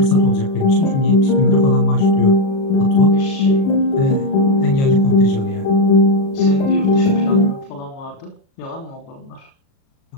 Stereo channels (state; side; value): late; right; 37 ms